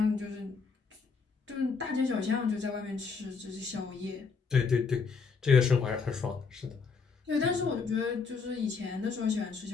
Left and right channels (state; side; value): quieter; right; 5.1 dB